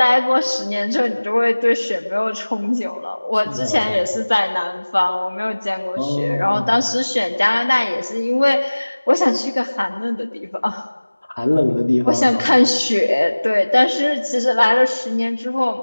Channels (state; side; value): inverted; both; correlation -1.00